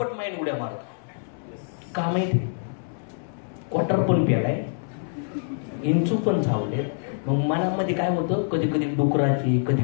माइंड उड्या मारतो. का माहिती? क्वार्टर पण पेलाय, इंचू पण झावले. मग मनामध्ये काय होतं? कधी कधी डुकराचे, कधी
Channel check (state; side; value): silent; right; 61 dB below the other